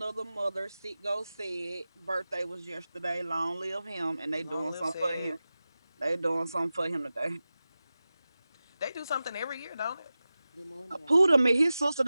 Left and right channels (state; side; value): inverted; both; correlation -0.95